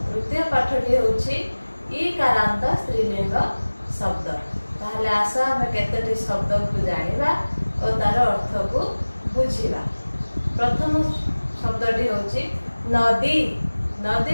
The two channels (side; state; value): both; inverted; correlation -1.00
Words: तृतीय पाठटी होछि ईकारांत स्त्रीलिंग शब्द। ताहले आस आम केतोटी शब्द को जानिबा और तार अर्थ को बुझिबा। प्रथम शब्दटी होछि नदी।